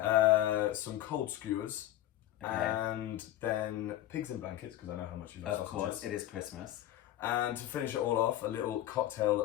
Some cold skewers. Okay. And then pigs in blankets, because I know how much you love sausages. Of course, it is Christmas. And to finish it all off, a little cocktail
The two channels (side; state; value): right; quieter; 13.6 dB